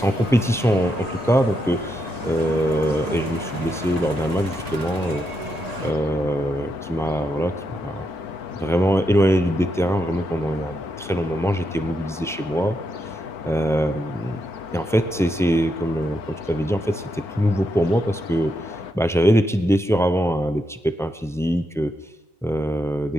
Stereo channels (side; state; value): both; normal; correlation 0.82